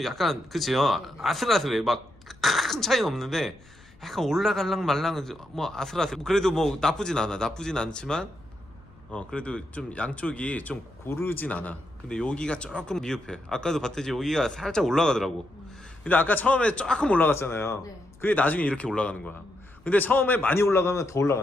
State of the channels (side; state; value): left; noise; rumble, 26 dB below the sound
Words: 약간 그치요. 아슬아슬해. 막 큰 차이는 없는데 약간 올라갈랑 말랑 뭐 아슬아슬. 그래도 뭐 나쁘진 않지만 그래도 좀 양쪽이 좀 고르진 않아. 근데 여기가 조금 미흡해. 아까도 봤듯이 여기가 살짝 올라가더라고. 근데 아까 처음에 조금 올라갔잖아요. 네. 그게 나중에 이렇게 올라가는 거야. 근데 처음에 많이 올라가면 더